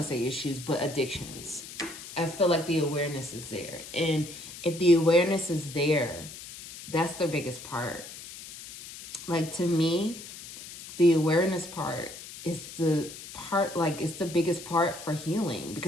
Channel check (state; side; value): noise; left; hiss, 13 dB below the sound